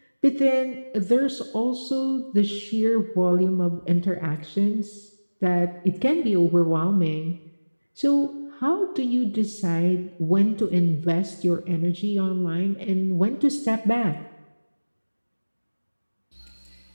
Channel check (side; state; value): both; inverted; correlation -1.00